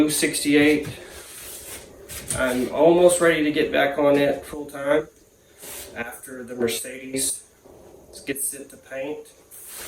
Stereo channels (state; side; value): identical; both; correlation 1.00